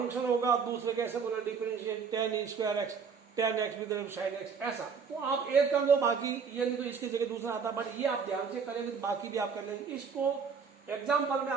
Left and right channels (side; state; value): left; quieter; 5.9 dB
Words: होगा, दूसरे कैसे बोला differentiate tan E square x, tan x with sine x, ऐसा। तो आप एक कर लो, बाकी ये नहीं तो इसकी जगह दूसरा आता, बट ये आप ध्यान से करेंगे तो बाकी भी आप कर लेंगे। इसको एग्जाम्पल में